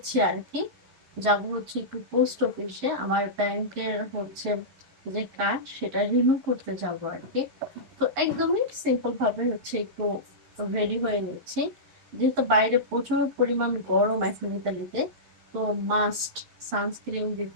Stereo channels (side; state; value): left; late; 12 ms